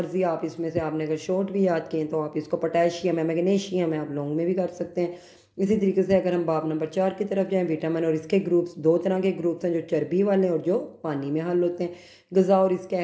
आप इसमें से आपने अगर शॉर्ट भी याद किए तो आप इसको पोटेशियम है, मैग्नीशियम है, आप लॉन्ग में भी कर सकते हैं। इसी तरीके से अगर हम बाब नंबर 4 की तरफ जाएं, विटामिन और इसके ग्रुप्स, 2 तरह के ग्रुप्स हैं, जो चर्बी वाले और जो पानी में हल होते हैं। ग़िज़ा और इसके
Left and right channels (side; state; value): both; identical; correlation 1.00